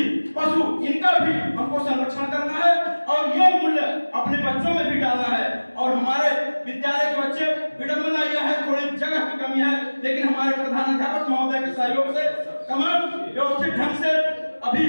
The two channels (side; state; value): both; inverted; correlation -1.00